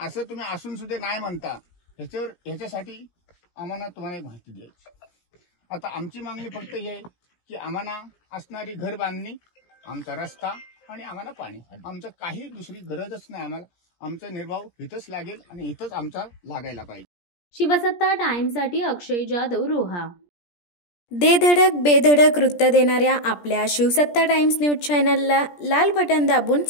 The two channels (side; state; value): right; late; 17 ms